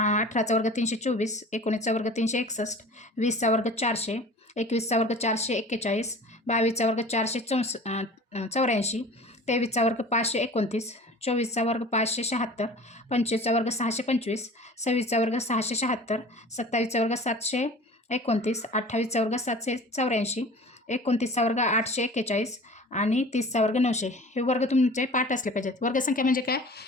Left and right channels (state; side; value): normal; both; correlation 0.42